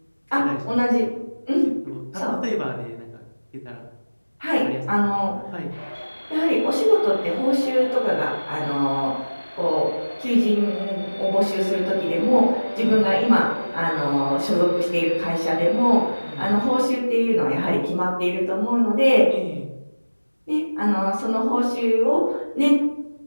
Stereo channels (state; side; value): inverted; both; correlation -1.00